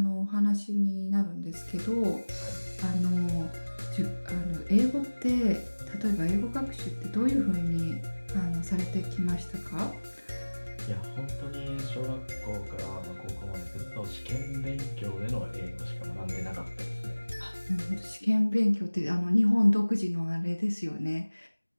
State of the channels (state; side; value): inverted; both; correlation -1.00